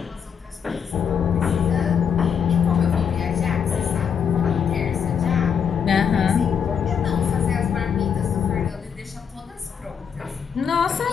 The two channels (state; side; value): quieter; right; 7.3 dB